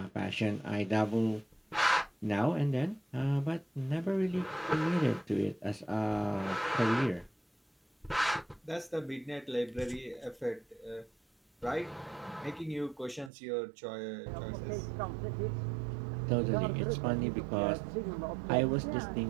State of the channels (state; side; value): drops out; left; at 13.3 s